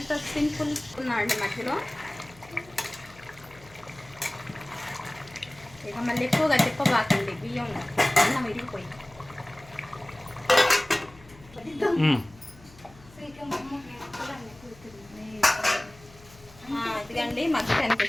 సింపుల్ ఉన్నాయండి. మధ్యలో ఇక మళ్ళీ ఎక్కువగా తిప్పబాకండి, బియ్యం అన్నం విరిగిపోయి. ఇదిగండి మగ్గటానికి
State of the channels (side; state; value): left; noise; hum, 23 dB below the sound